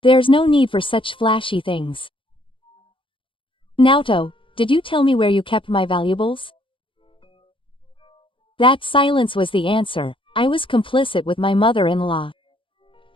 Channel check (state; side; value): late; right; 0.25 ms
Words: There's no need for such flashy things. Naoto, did you tell me where you kept my valuables? That silence was the answer. I was complicit with my mother-in-law.